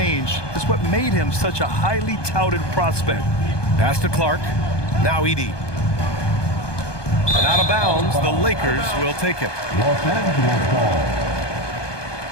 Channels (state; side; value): late; right; 1.2 ms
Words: is what made him such a highly touted prospect. Pass to Clark. Now Edey. And out of bounds, the Lakers will take it. Los Angeles ball.